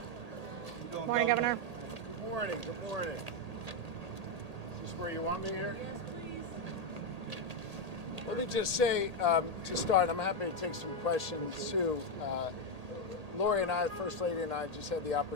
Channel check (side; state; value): left; late; 1.8 ms